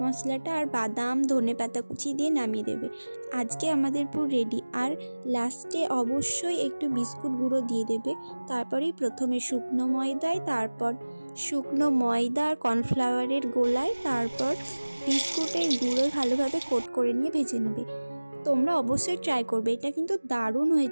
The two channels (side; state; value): both; inverted; correlation -1.00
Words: মশলাটা, আর বাদাম, ধনেপাতা কুচি দিয়ে নামিয়ে দেবে। আজকে আমাদের পুরো রেডি। আর লাস্টে অবশ্যই একটু বিস্কুট গুঁড়ো দিয়ে দেবে। তারপরেই প্রথমে শুকনো ময়দায়, তারপর শুকনো ময়দা আর কর্নফ্লাওয়ারের গোলায়, তারপর বিস্কুটের গুঁড়ো ভালোভাবে কোট করে নিয়ে ভেজে নেবে। তোমরা অবশ্যই ট্রাই করবে, এটা কিন্তু দারুণ